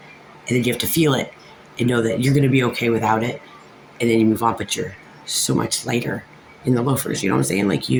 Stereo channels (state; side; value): identical; both; correlation 1.00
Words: and then you have to feel it and know that you're going to be okay without it, and then you move on. But you're so much lighter in the loafers. You know what I'm saying? Like